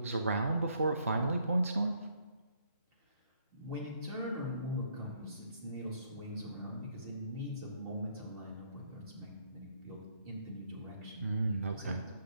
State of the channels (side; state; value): both; inverted; correlation -0.70